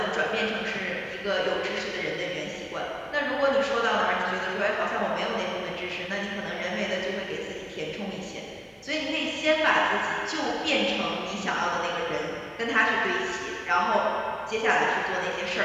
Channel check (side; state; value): both; identical; correlation 1.00